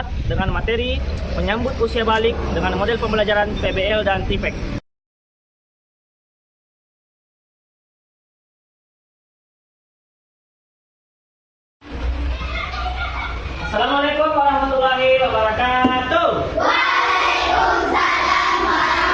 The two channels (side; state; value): both; identical; correlation 1.00